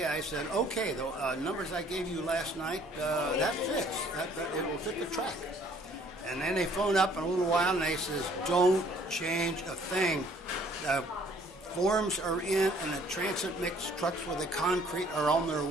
I said, okay, the numbers I gave you last night, that fits. It will fit the track. And then they phone up in a little while and they says, don't change a thing. The forms are in and the transit mix trucks with the concrete are on their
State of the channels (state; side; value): normal; both; correlation 0.59